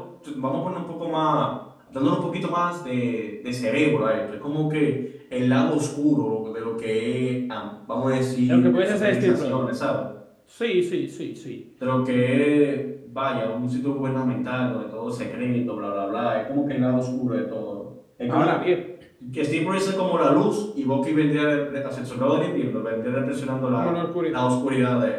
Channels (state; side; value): identical; both; correlation 1.00